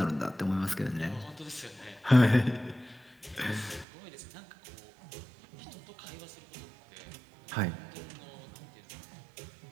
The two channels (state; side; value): drops out; left; at 3.9 s